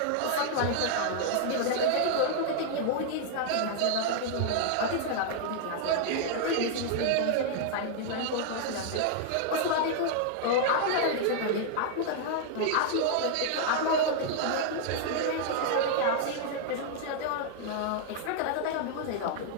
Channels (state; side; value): different; both; correlation 0.00